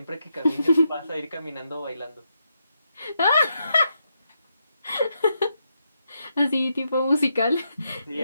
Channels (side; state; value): both; inverted; correlation -0.82